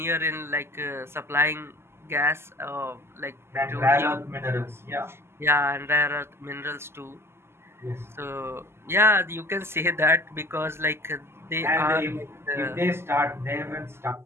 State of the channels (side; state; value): left; late; 0.12 ms